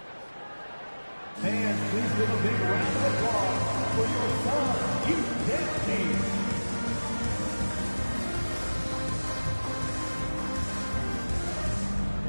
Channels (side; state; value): both; inverted; correlation -1.00